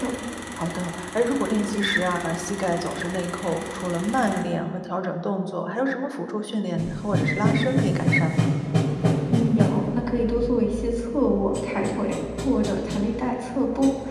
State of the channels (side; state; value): both; identical; correlation 1.00